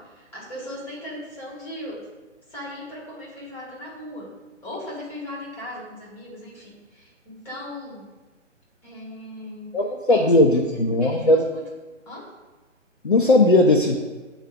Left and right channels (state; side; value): normal; both; correlation 0.15